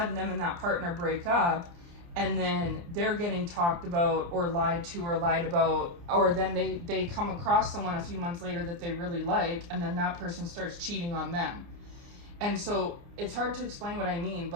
them and that partner break up, and then they're getting talked about or lied to or lied about, or then they come across someone a few months later that they really like, and then that person starts cheating on them. And so it's hard to explain what I mean,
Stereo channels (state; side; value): late; left; 29 ms